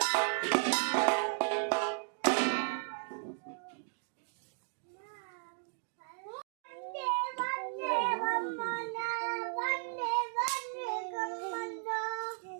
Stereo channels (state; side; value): silent; left; 54 dB below the other